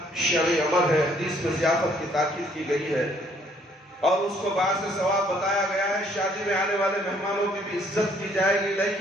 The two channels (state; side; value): normal; both; correlation 0.64